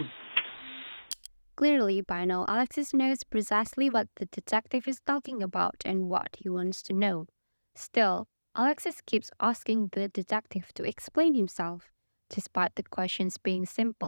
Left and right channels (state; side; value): inverted; both; correlation -1.00